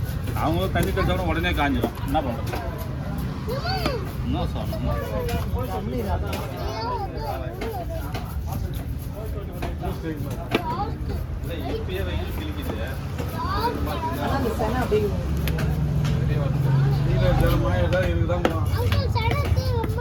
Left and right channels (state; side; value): identical; both; correlation 1.00